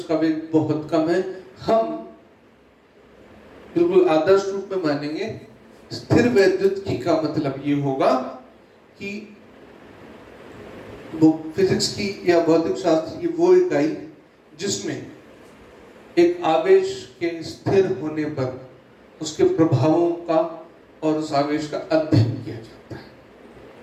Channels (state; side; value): identical; both; correlation 1.00